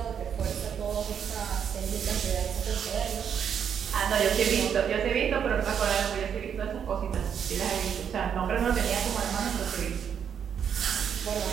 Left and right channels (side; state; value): left; quieter; 8.0 dB